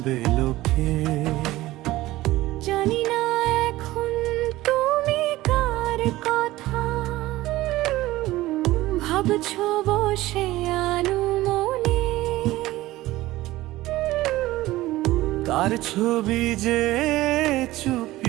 লোকে। জানি না এখন তুমি কার কথা ভাবছো বসে আনুমনে। তার ছবি যে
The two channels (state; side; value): quieter; left; 17.3 dB